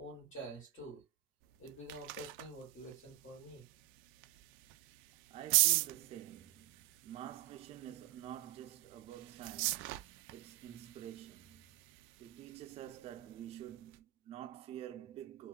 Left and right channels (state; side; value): quieter; left; 15.0 dB